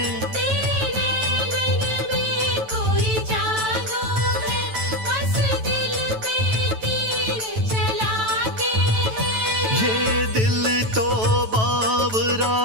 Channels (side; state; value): left; late; 9.1 ms